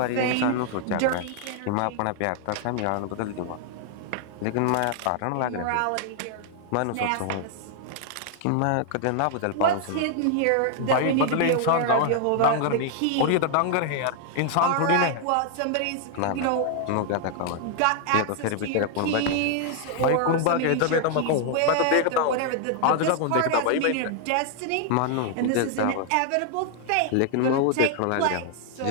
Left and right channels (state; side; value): different; both; correlation 0.00